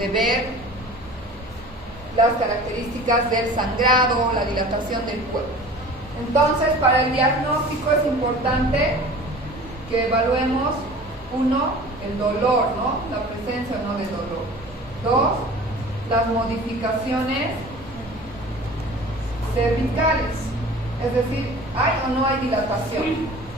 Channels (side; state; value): both; normal; correlation 0.42